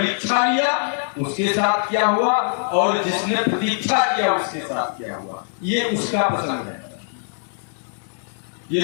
लिया उसके साथ क्या हुआ, और जिसने प्रतीक्षा किया उसके साथ क्या हुआ, ये उसका पसंद है।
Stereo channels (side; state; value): right; silent; digital silence